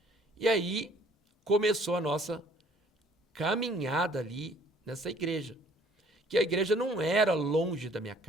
E aí começou a nossa caminhada ali nessa igreja. Que a igreja não era longe da minha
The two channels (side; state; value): both; normal; correlation 0.57